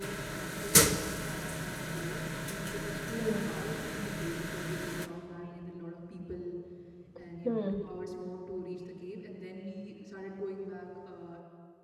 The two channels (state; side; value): identical; both; correlation 1.00